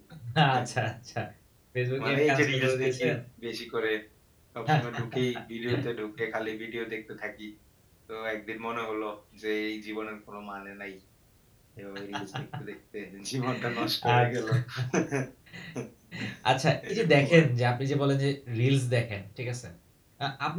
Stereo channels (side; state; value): both; identical; correlation 1.00